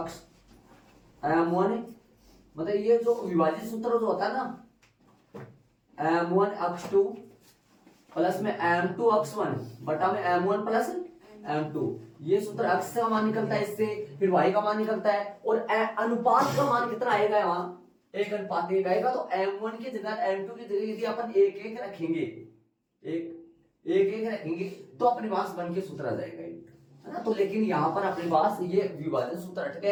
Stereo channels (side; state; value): both; identical; correlation 1.00